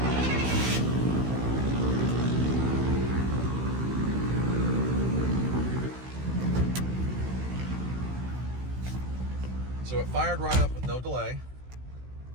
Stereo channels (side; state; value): left; late; 16 ms